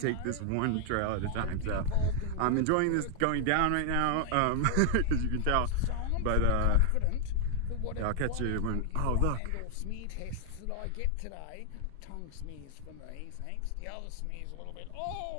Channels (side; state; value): both; different; correlation 0.00